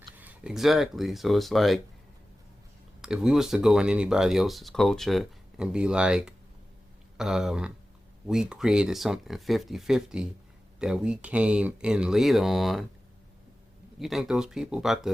Exactly. So it's like, if we was to go in anybody else's culture and be like, we created something 50-50 that we came in later on, you think those people about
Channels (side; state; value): both; normal; correlation 0.95